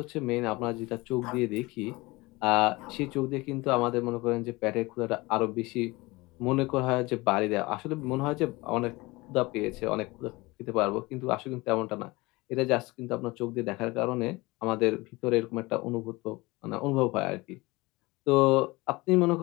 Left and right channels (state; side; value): quieter; right; 22.6 dB